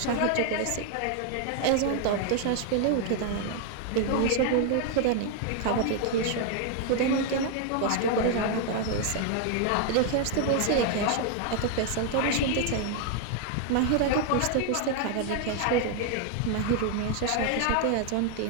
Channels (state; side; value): different; both; correlation 0.00